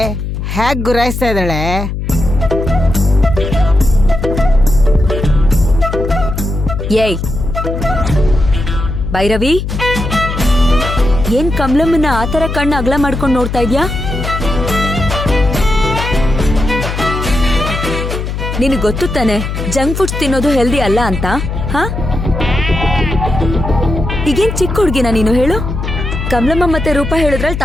ಹೇಗ್ ಗುರಾಯಿಸ್ತಾ ಇದ್ದಾಳೆ. ಏಯ್ ಭೈರವಿ, ಏನ್ ಕಮಲಮ್ಮನ ಆತರ ಕಣ್ಣು ಅಗಲ ಮಾಡ್ಕೊಂಡು ನೋಡ್ತಾ ಇದ್ಯಾ? ನಿನಗೆ ಗೊತ್ತು ತಾನೆ ಜಂಕ್ ಫುಡ್ಸ್ ತಿನ್ನೋದು ಹೆಲ್ದಿ ಅಲ್ಲ ಅಂತ. ಹಾ, ಈಗೇನ್ ಚಿಕ್ಕ ಹುಡ್ಗಿನ ನೀನು ಹೇಳು? ಕಮಲಮ್ಮ ಮತ್ತೆ ರೂಪ ಹೇಳಿದ್ರಲ್ಲಿ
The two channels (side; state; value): left; noise; hum, 4 dB below the sound